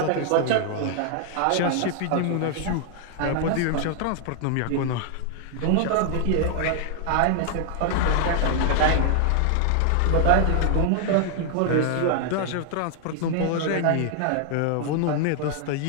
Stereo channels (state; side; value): different; both; correlation 0.00